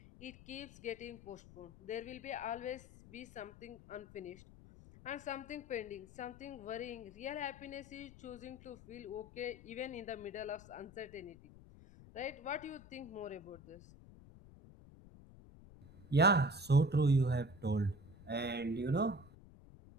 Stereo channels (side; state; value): left; noise; rumble, 19 dB below the sound